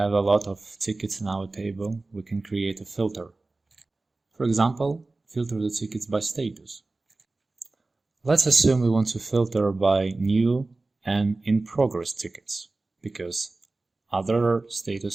a lot of tickets in our table, we can create a filter. For example, filter the tickets by status. Let's assume we want to filter by new and in progress tickets, because other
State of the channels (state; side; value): quieter; left; 3.3 dB